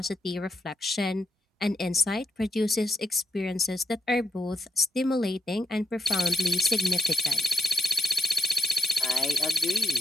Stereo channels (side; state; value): both; normal; correlation 0.81